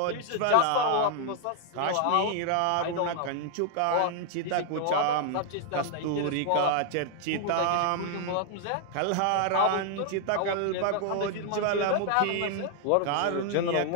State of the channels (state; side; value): different; both; correlation 0.00